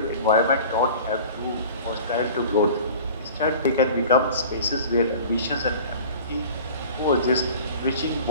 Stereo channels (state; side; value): inverted; both; correlation -0.42